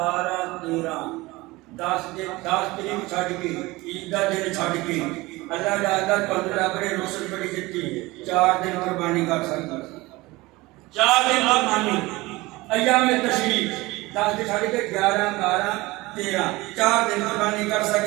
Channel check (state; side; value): quieter; left; 21.1 dB